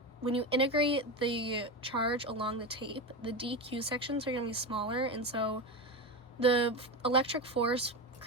integrate the charge along the tape, the DQ sections are going to be smaller, and so the electric force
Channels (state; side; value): normal; both; correlation 0.18